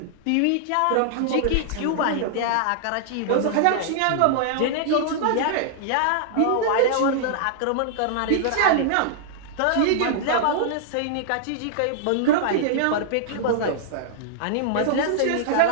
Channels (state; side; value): different; both; correlation -0.01